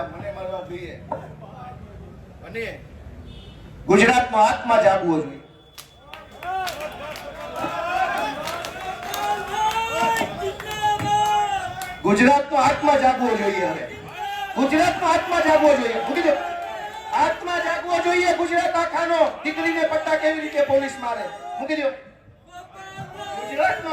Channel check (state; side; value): identical; both; correlation 1.00